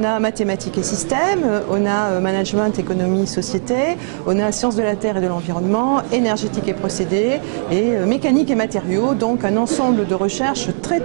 a mathématiques et systèmes, on a management, économie, société, on a sciences de la terre et de l'environnement, énergétique et procédés et mécanique et matériaux. Donc un ensemble de recherches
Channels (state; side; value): silent; left; digital silence